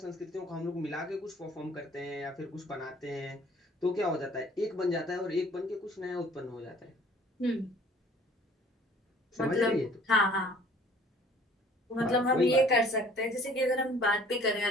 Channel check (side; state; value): both; normal; correlation 0.53